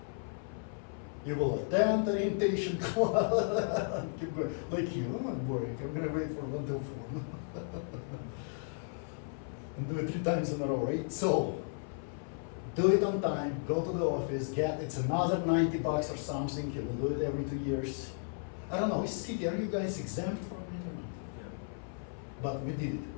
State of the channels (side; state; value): right; silent; 55 dB below the other